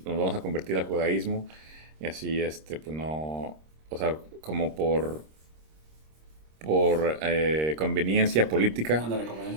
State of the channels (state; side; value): late; left; 26 ms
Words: vamos a convertir al judaísmo, y así, pues no, o sea, como por conveniencia política. Ándale,